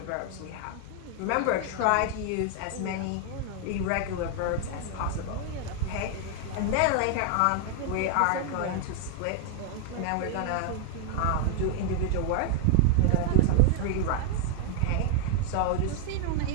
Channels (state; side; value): different; both; correlation 0.00